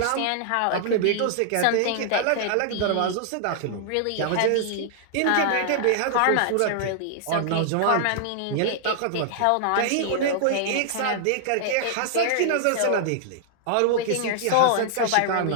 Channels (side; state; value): both; different; correlation -0.01